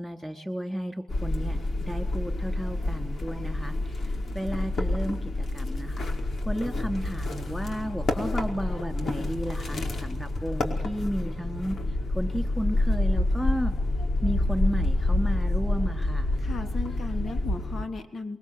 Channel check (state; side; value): normal; both; correlation 0.90